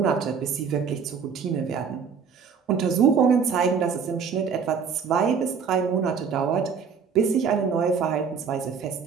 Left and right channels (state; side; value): quieter; left; 6.3 dB